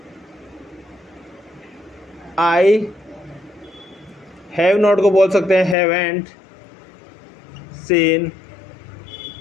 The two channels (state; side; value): drops out; right; at 5.8 s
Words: I have not को बोल सकते हैं हैवेंट सीन